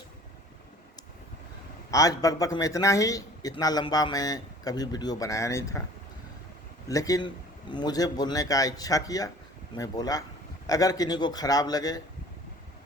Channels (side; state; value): both; normal; correlation 0.49